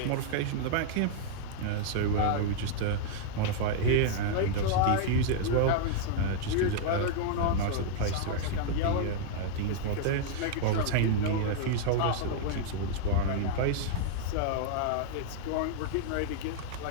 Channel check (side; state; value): both; different; correlation -0.01